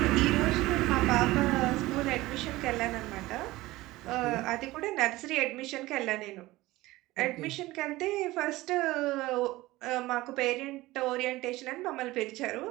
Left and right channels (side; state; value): left; quieter; 18.7 dB